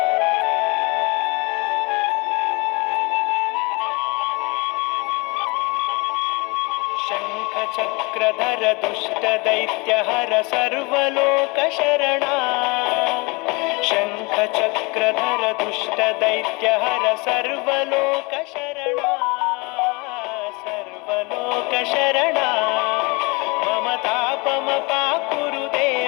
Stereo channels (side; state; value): right; quieter; 27.6 dB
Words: चक्रधर दुष्ट दैत्यहर सर्वलोकशरणा शङ्ख चक्रधर दुष्ट दैत्यहर सर्वलोकशरणा सर्वलोकशरणा मम तापमपाकुरु